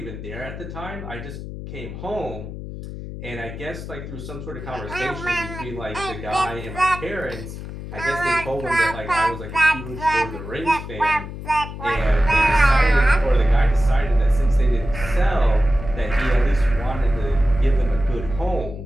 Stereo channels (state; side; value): noise; left; hum, 10 dB below the sound